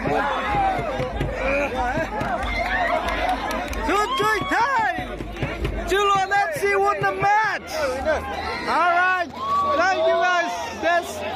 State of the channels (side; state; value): both; identical; correlation 1.00